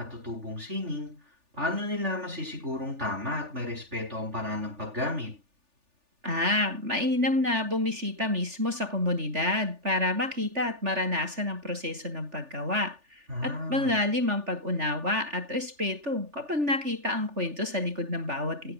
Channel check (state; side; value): late; left; 3.4 ms